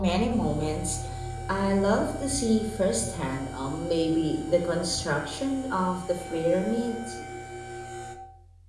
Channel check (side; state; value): both; identical; correlation 1.00